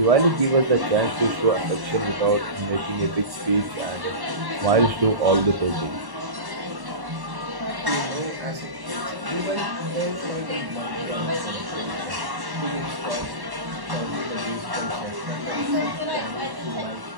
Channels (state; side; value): late; left; 1.1 ms